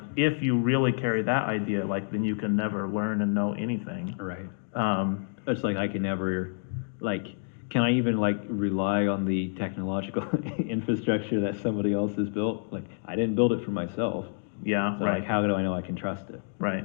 if you really carry that idea, like, then you can never learn and know anything. Right. It's like I can never, like, can I even, like, rely on the technological infrastructure that somebody else has built? Like, I didn't build it for myself. Yeah, So, right. like, how do I know I can trust it?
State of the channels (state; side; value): silent; right; digital silence